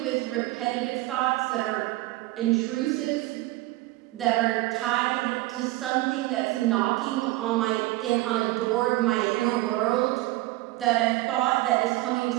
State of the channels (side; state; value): left; quieter; 18.7 dB